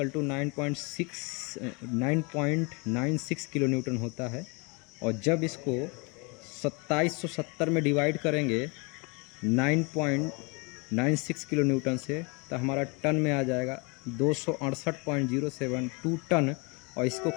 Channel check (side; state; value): right; quieter; 30.3 dB